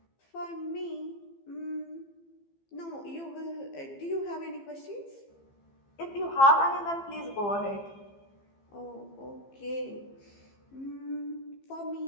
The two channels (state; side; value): late; right; 15 ms